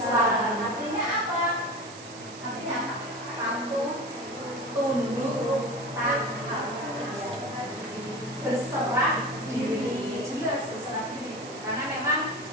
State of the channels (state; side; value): noise; right; hiss, 16 dB below the sound